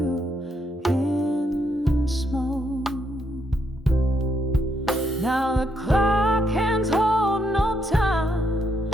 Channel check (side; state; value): both; normal; correlation 0.76